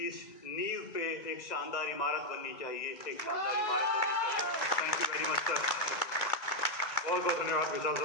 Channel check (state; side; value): late; right; 2.0 ms